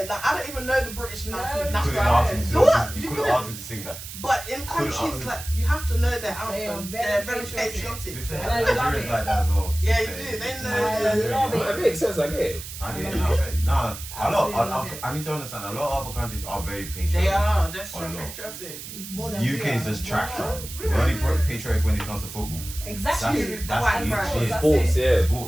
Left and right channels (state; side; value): noise; right; hiss, 11 dB below the sound